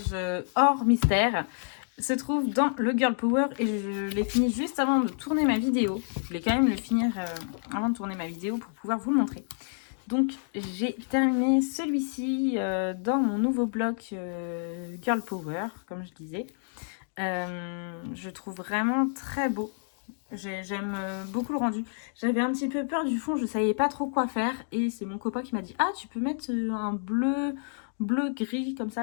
hors mystère se trouve dans le Girl Power et je l'ai fini juste avant de tourner ma vidéo. Je voulais quand même le finir avant de tourner ma vidéo pour pouvoir vous le montrer. Donc j'ai terminé celui-ci dans mon nouveau bloc Girl Power, comme je disais. Je trouve vraiment très beau. J'aime beaucoup le rendu. J'avais un petit peu peur du fond, je savais pas trop quoi faire. Et c'est mon copain qui m'a dit « Ah, tu peux mettre un bleu-gris comme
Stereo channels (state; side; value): silent; right; digital silence